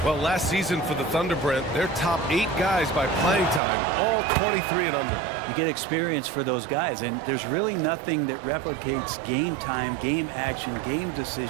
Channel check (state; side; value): drops out; left; at 3.6 s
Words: Well, last season for the Thunder, Brent, their top 8 guys by playing time, all 23 and under. You get experience for those guys, and there's really nothing that replicates game time, game action, game